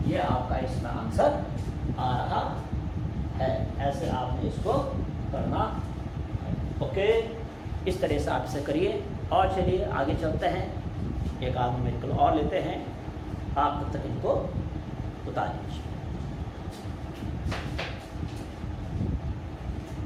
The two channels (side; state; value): both; identical; correlation 1.00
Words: ये आपका इसमें आंसर आ रहा है। ऐसे आपने इसको करना, ओके। इस तरह से आप इसे करिए और चलिए आगे चलते हैं। एक आध न्यूमेरिकल और लेते हैं, आप तब तक इनको बता दीजिए।